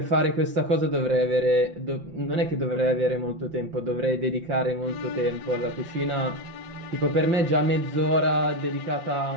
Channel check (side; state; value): left; late; 5.7 ms